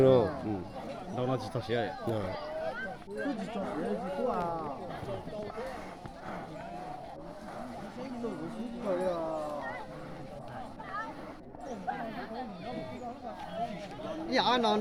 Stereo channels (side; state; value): both; identical; correlation 1.00